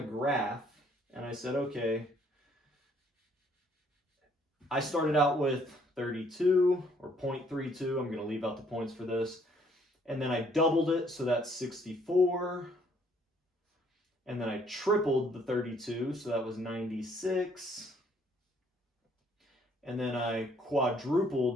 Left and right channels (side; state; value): both; normal; correlation 0.64